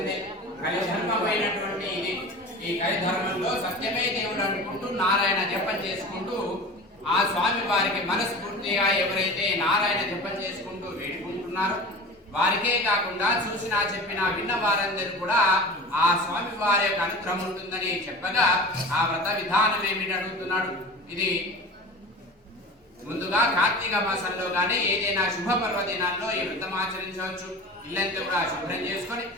కలిధర్మమైనటువంటి ఇది. ఈ కలిధర్మంలో సత్యమే దేవుడు అనుకుంటూ నారాయణ జపం చేసుకుంటూ ఆ స్వామి వారికి మనస్ఫూర్తిగా ఎవరైతే నారాయణ జపం చేసుకుంటూ వేడుకుంటున్నారో వారికే కాకుండా చూసినా చెప్పినా విన్న వారందరూ కూడా ఆ స్వామి వారి యొక్క అనుగ్రహం ఉంటుందని చెప్పగా ఆ వ్రత విధానం ఏమిటి అడుగుతున్నాడు. ఇది ముందుగా కార్తీక మాసంలో కానీ ఏదైనా శుభ పర్వదినాల్లో ఈ వ్రతం ఆచరించవచ్చు. ఇల్లంతా కూడా శుభ్రం చేసుకొని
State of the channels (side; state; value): both; normal; correlation 0.35